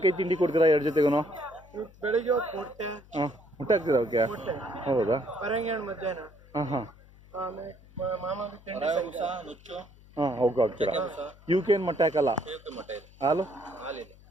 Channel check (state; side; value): noise; left; hum, 24 dB below the sound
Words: ತಿಂಡಿ ಕೊಡ್ತೀರಾ 2 ಜೊತೆಗೂ? ಬೆಳಿಗ್ಗೆ ಮುಟ್ಟೆ ಹಾಕ್ತೀರಾ ಅವಕ್ಕೆ? ಹೌದಾ? ಮಧ್ಯಾಹ್ನ ಅವಕ್ಕೆ ಹಾಕ್ತೀರಾ? ಇವಕ್ಕೇನು ಮೊಟ್ಟೆ ಹಾಕಲ್ಲ? ಹಾಲು?